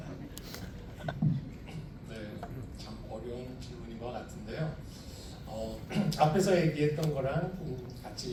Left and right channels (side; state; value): both; identical; correlation 1.00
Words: 네, 참 어려운 질문인 것 같은데요. 앞에서 얘기했던 거랑